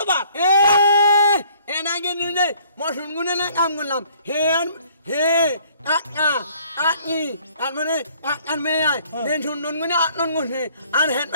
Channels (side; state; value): both; inverted; correlation -0.59